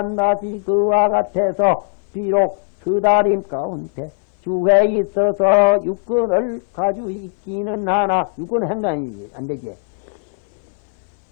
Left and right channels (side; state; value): right; silent; 61 dB below the other